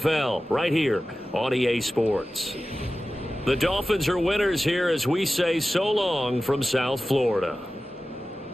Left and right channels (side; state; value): both; normal; correlation 0.95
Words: right here on EA Sports. The Dolphins are winners here as we say so long from South Florida.